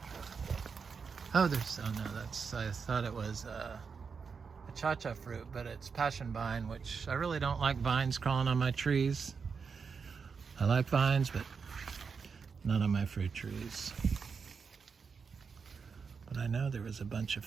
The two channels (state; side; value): quieter; left; 5.6 dB